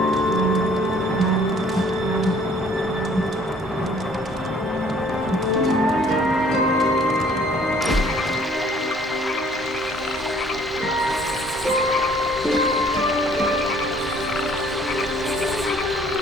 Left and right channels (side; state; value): both; normal; correlation 0.58